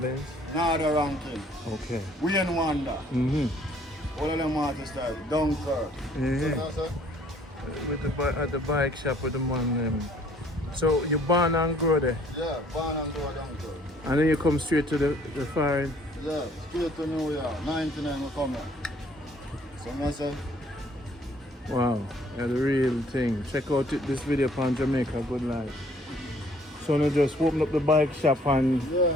Nada ranking. Okay. Wayne Wonder. All of them artists like Dunkirk. Yeah. So, With at the bike shop with the man. So you born and grow there? yeah, born and grow Dunkirk. And then you come straight to the foreign? Yeah, straight to New York. 99 we come here. So I say, Wow, yeah, the real thing. Check out this video on Jamaica Good Life. So now just open up the bike shop and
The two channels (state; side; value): normal; both; correlation 0.60